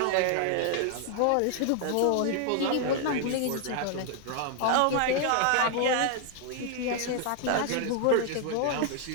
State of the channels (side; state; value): both; different; correlation 0.00